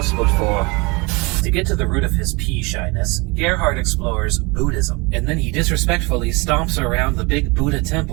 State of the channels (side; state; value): left; quieter; 27.1 dB